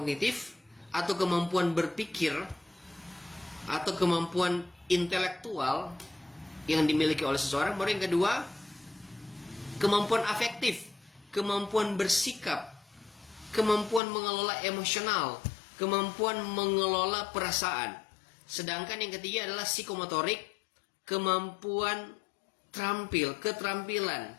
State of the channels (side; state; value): right; drops out; at 14.0 s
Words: atau kemampuan berpikir, atau kemampuan intelektual yang dimiliki oleh seseorang. Baru yang kedua, kemampuan afektif, kemampuan bersikap, kemampuan mengelola emosional, kemampuan mengelola perasaan. Sedangkan yang ketiga adalah psikomotorik, kemampuan keterampilan,